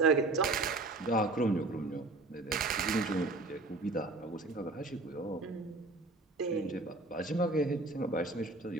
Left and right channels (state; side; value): quieter; left; 3.1 dB